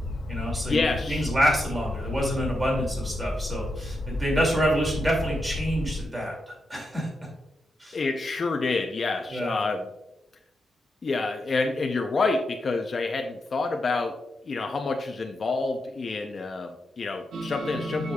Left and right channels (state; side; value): normal; both; correlation 0.85